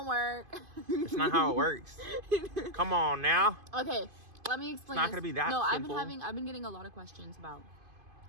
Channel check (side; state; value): left; late; 2.5 ms